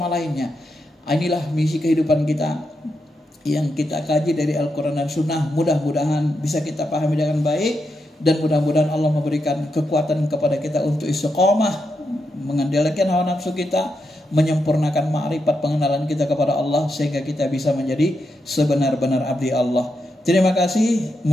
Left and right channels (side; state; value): both; normal; correlation 0.84